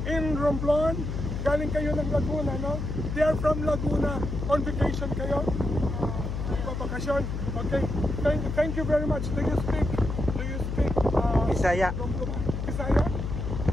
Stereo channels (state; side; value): noise; left; hum, 3 dB below the sound